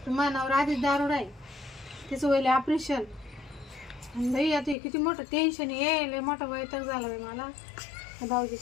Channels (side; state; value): right; drops out; at 4.8 s